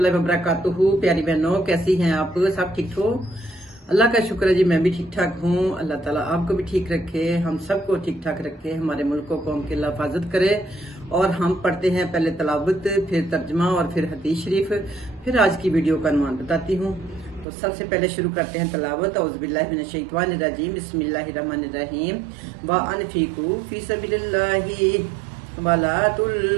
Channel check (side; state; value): left; drops out; at 17.4 s